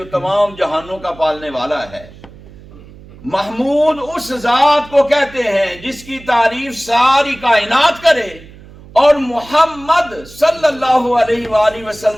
تمام جہانوں کا پالنے والا ہے. محمود اس ذات کو کہتے ہیں جس کی تعریف ساری کائنات کرے، اور محمد صلی اللہ علیہ وآلہ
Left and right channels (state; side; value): noise; right; hum, 20 dB below the sound